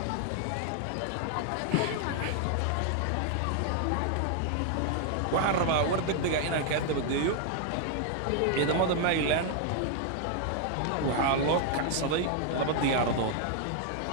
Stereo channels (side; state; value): both; different; correlation 0.00